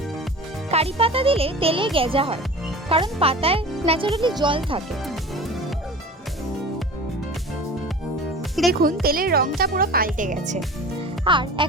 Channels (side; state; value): both; normal; correlation 0.37